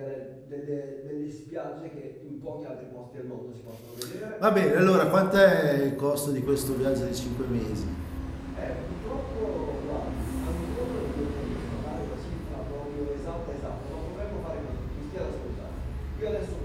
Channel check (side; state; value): both; identical; correlation 1.00